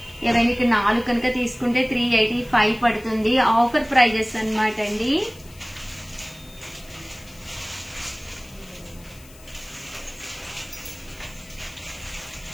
ఎవరైనా ఇక్కడ 4 కనుక తీసుకుంటే 385 పడుతుంది. ఆఫర్ ప్రైజెస్ అనమాట అండి.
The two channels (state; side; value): noise; left; hiss, 23 dB below the sound